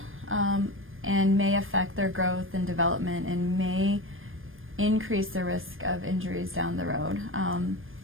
And may affect their growth and development and may increase the risk of injuries down the road.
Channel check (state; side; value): late; left; 0.59 ms